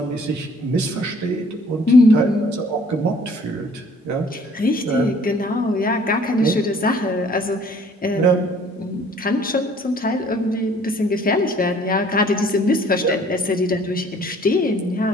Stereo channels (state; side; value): normal; both; correlation 0.56